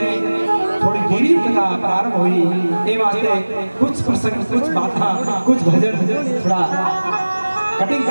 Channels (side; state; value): both; inverted; correlation -1.00